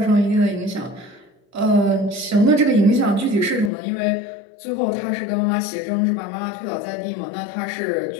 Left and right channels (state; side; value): drops out; right; at 3.7 s